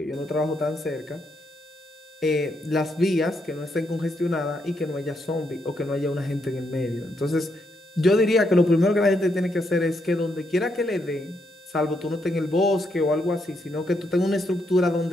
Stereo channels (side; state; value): both; normal; correlation 0.78